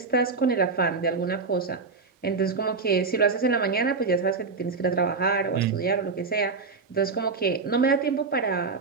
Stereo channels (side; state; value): left; quieter; 4.5 dB